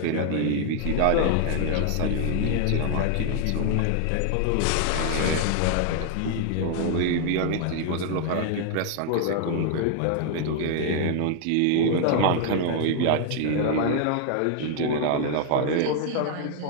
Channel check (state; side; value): different; both; correlation 0.00